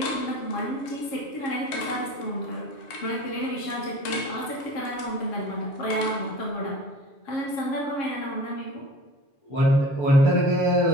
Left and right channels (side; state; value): right; late; 7.3 ms